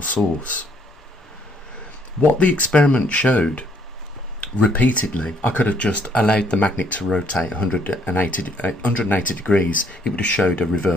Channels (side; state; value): both; normal; correlation 0.66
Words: source. What the experiment showed repeatedly, I could have just allowed the magnet to rotate 180 degrees, it would have showed a